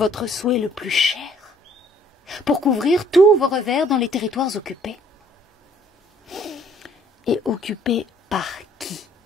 souhait le plus cher, pour couvrir tous vos revers dans les territoires occupés. Et occupés par qui?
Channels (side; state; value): both; normal; correlation 0.60